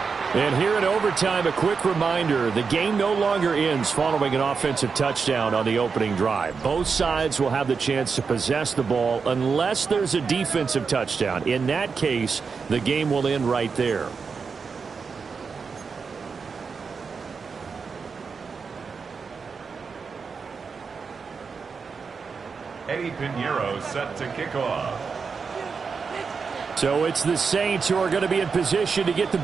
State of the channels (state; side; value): quieter; left; 5.3 dB